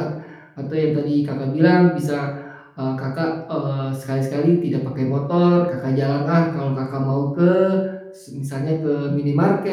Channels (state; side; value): identical; both; correlation 1.00